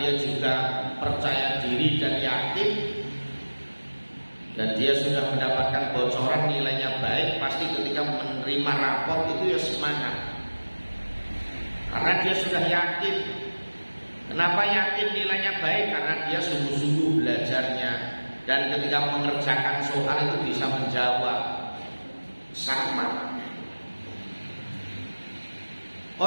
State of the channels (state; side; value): inverted; both; correlation -1.00